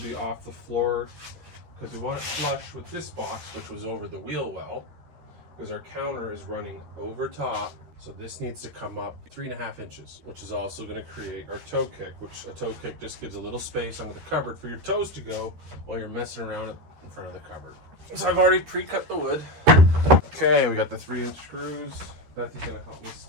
off the floor because we want it flush with this box, which was over the wheel well, because our counter is running over top. So this needs to come up 3.5 inches, which is also going to create our toe kick, which a toe kick just gives a little space under the cupboard for your toes to go while you're messing around in front of the cupboard. So I've already pre-cut the wood. Okay, we got the 3-inch screws. Bethy's going to help me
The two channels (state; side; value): late; left; 13 ms